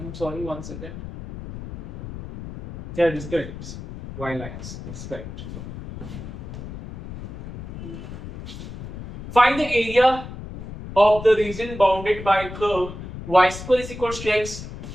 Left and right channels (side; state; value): left; noise; rumble, 11 dB below the sound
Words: sorry, one second. Yeah, it is correct. It's Y lines, it's correct. Find the area of the region bounded by curve y square is equals to x